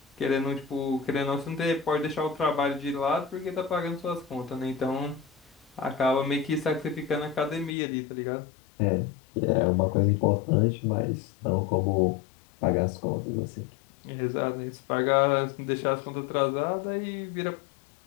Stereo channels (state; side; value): drops out; right; at 7.8 s